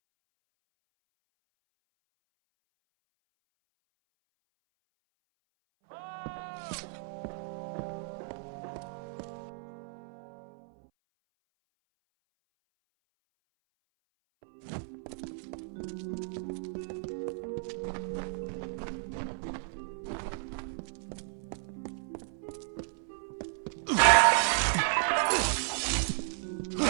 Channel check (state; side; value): silent; left; 55 dB below the other